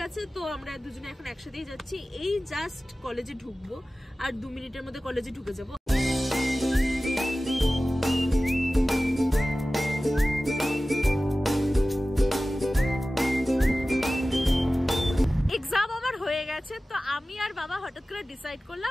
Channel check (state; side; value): normal; both; correlation 0.96